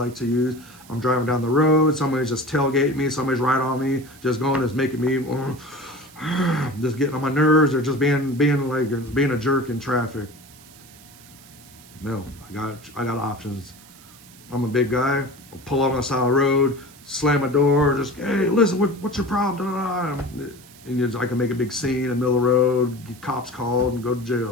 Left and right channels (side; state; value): right; noise; hiss, 23 dB below the sound